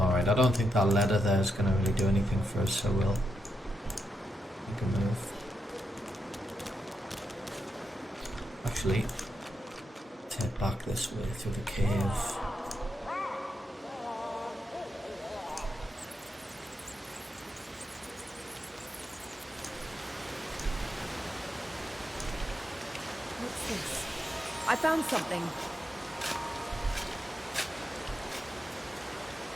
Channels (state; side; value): normal; both; correlation 0.85